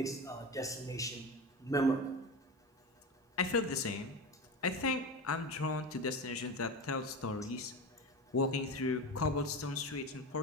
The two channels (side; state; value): both; normal; correlation 0.25